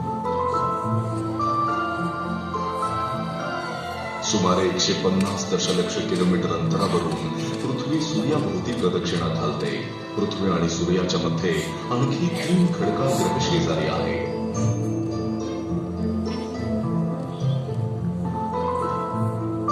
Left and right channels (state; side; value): identical; both; correlation 1.00